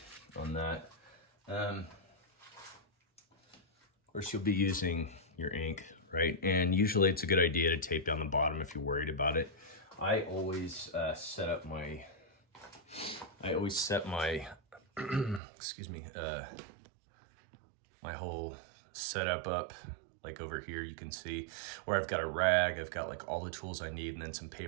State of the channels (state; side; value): drops out; left; at 15.4 s